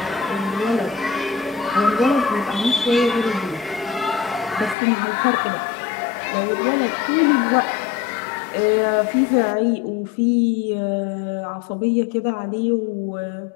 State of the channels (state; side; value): drops out; right; at 4.8 s